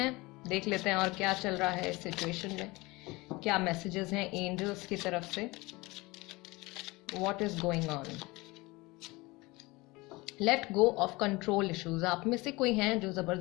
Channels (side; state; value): right; quieter; 22.9 dB